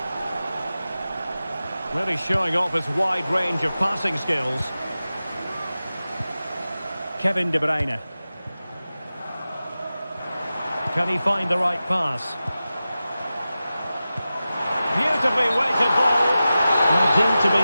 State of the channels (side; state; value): both; inverted; correlation -0.94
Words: Really showing off his wide range of passing skills. Kevin De Bruyne. Can he find the right pass? Beautifully weighted ball. And deemed to be